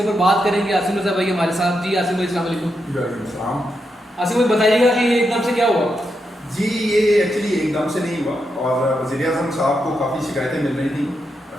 بات کریں گے. عاصم رضا بھائی ہمارے ساتھ. جی عاصم بھائی السلام علیکم. وعلیکم السلام. عاصم بھائی بتائیے گا کہ یہ ایک دم سے کیا ہوا؟ جی یہ ایکچولی ایک دم سے نہیں ہوا اور وزیر اعظم صاحب کو کافی شکایتیں مل رہی تھیں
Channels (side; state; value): both; normal; correlation 0.84